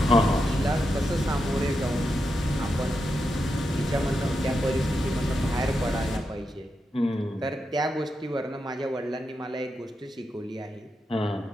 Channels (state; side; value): normal; both; correlation 0.86